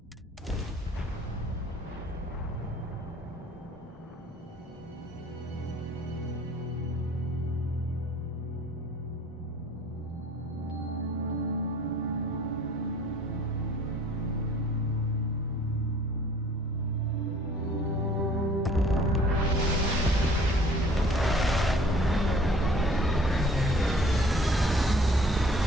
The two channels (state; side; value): normal; both; correlation 0.53